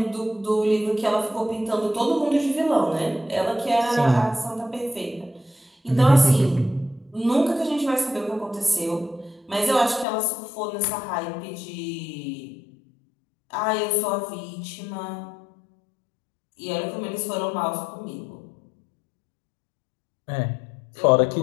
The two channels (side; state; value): right; drops out; at 10.1 s